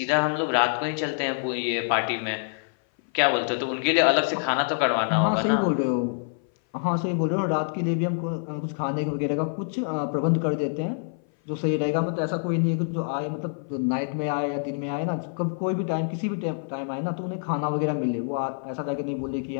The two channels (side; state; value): right; silent; 57 dB below the other